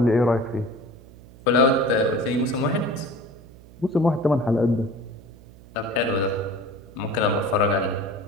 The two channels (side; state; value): right; noise; hum, 21 dB below the sound